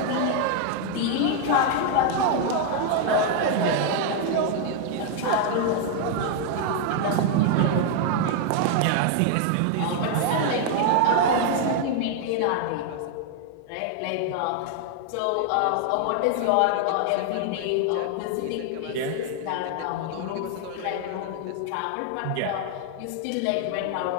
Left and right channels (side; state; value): both; different; correlation 0.00